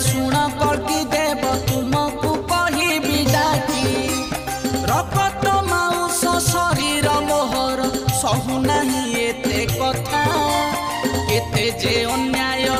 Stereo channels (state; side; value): identical; both; correlation 1.00